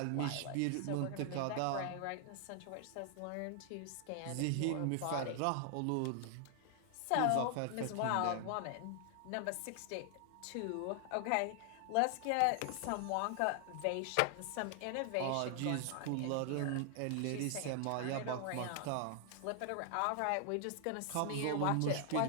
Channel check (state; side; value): different; both; correlation 0.00